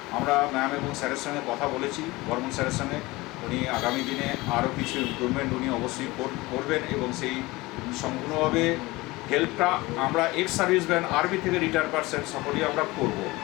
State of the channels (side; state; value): right; quieter; 21.2 dB